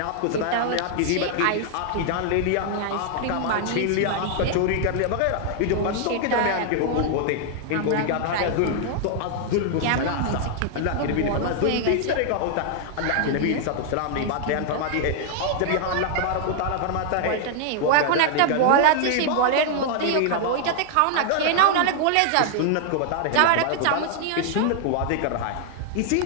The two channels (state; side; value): different; both; correlation 0.00